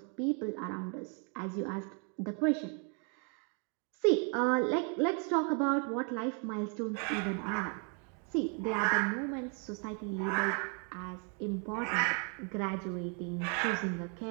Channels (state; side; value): quieter; left; 38.5 dB